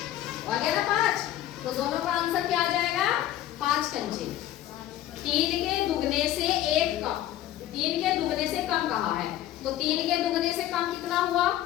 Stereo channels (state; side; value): quieter; right; 13.0 dB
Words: और क्या ना 5, तो दोनों का आंसर क्या आ जाएगा 5 कंचे। 3 के दुगने से 1 कम, 3 के दुगने से कम कहा है, तो 3 के दुगने से कम कितना हुआ,